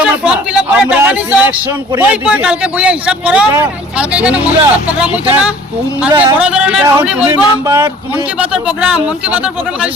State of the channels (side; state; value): both; normal; correlation 0.50